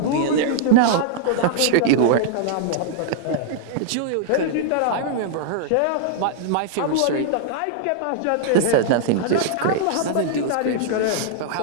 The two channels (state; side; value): different; both; correlation -0.01